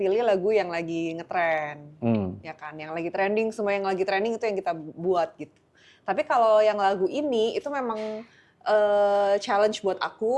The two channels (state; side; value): identical; both; correlation 1.00